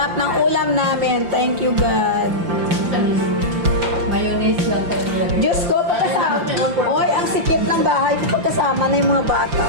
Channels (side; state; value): left; late; 5.8 ms